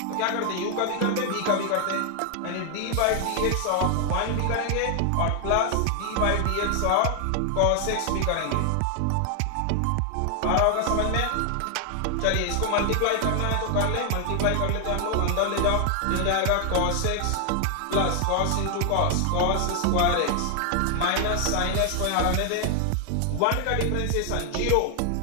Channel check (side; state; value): both; different; correlation 0.00